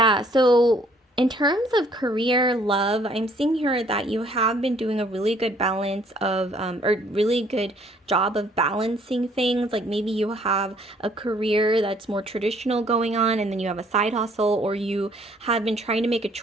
so in terms of career, love, I'm seeing here that you have been doing a really good balance of, or really good job of balancing things. Like maybe you have a career that's more traditional going on, and then you have a side hustle, or you have been trying to make a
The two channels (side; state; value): both; normal; correlation 0.62